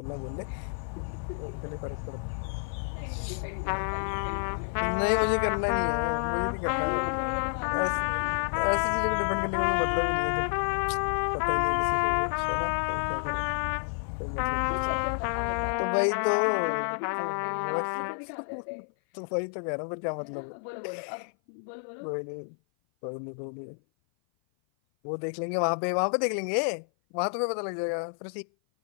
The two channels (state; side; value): silent; right; 56 dB below the other